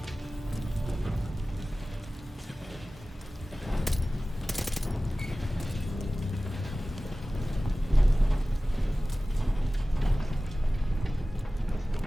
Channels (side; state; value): both; normal; correlation 0.97